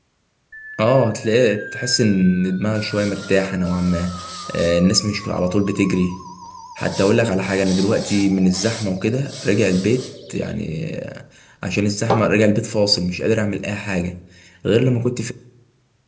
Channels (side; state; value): both; identical; correlation 1.00